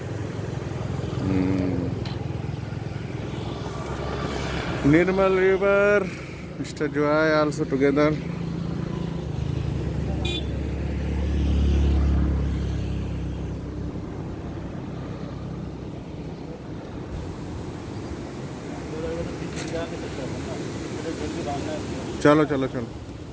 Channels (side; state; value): both; identical; correlation 1.00